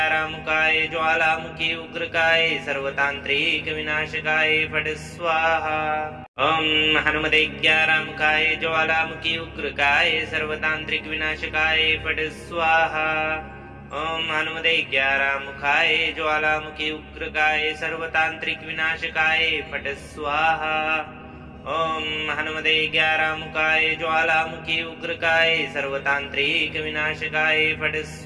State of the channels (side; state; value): both; identical; correlation 1.00